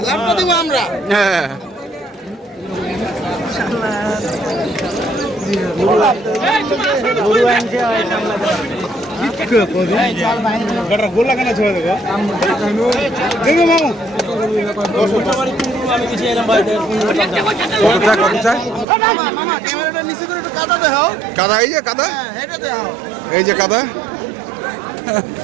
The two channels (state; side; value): drops out; left; at 18.9 s